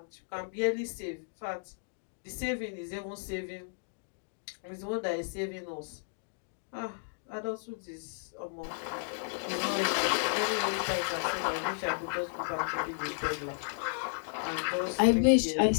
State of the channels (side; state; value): right; silent; digital silence